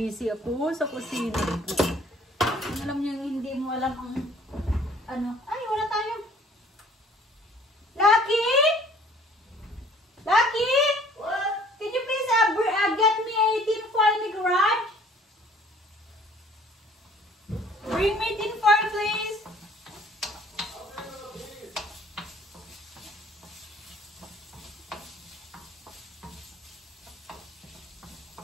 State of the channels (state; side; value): normal; both; correlation 0.55